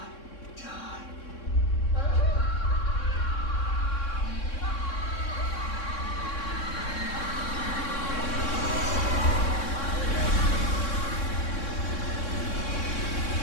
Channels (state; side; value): late; right; 3.6 ms